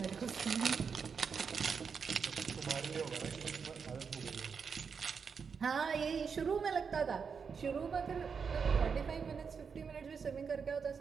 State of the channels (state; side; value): quieter; left; 6.0 dB